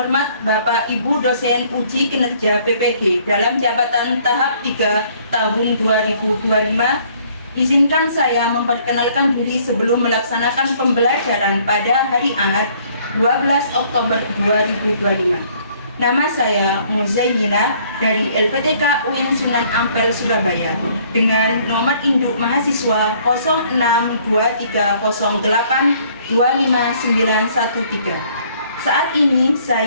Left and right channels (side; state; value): both; inverted; correlation -0.61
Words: Bapak Ibu dosen uji kinerja PPG dalam jabatan tahap 3 tahun 2025, izinkan saya memperkenalkan diri sebelum melaksanakan pembelajaran pada hari Ahad 12 Oktober 2025. Nama saya Muzayyinah dari LPTK UIN Sunan Ampel Surabaya dengan nomor induk mahasiswa 062308259113. Saat ini